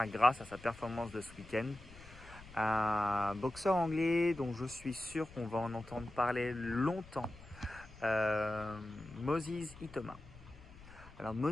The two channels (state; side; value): noise; left; rumble, 19 dB below the sound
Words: grâce à sa performance de ce week-end. Un boxeur anglais dont je suis sûr qu'on va en entendre parler longtemps, Moses Ithoma. Alors